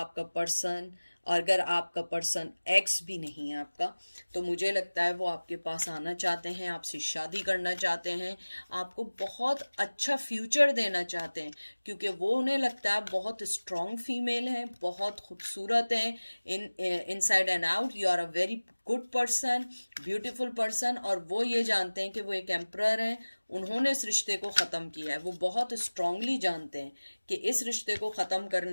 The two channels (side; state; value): both; inverted; correlation -1.00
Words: पर्सन, अगर आपका पर्सन एक्स भी नहीं है आपका, तो मुझे लगता है वो आपके पास आना चाहते हैं, आपसे शादी करना चाहते हैं, आपको बहुत अच्छा फ्यूचर देना चाहते हैं, क्योंकि वो उन्हें लगता है बहुत स्ट्रॉन्ग फीमेल हैं, बहुत खूबसूरत हैं, inside and out you are a very good person, beautiful person. और वो ये जानते हैं कि वो एक एम्परर हैं, उन्होंने इस रिश्ते को ख़त्म किया है। वो बहुत स्ट्रांगली जानते हैं कि इस रिश्ते को ख़त्म